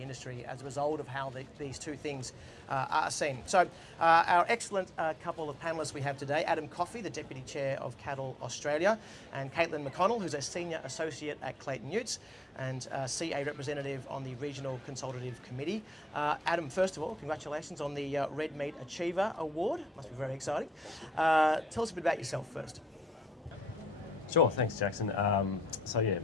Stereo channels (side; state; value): both; normal; correlation 0.79